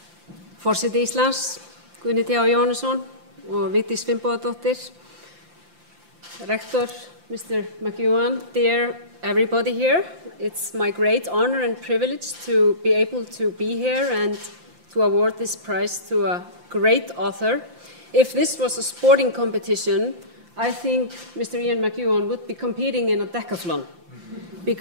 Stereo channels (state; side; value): late; left; 5.8 ms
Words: Forseti Íslands, Guðni T. Jóhannesson og Vigdís Finnbogadóttir, Rector, Mr. McEwan, dear everybody here, it's my great honor and privilege to be able to be here and to award this prize to a great author. if this was a sporting competition, I think Mr. Ian McEwan would be competing in a decathlon,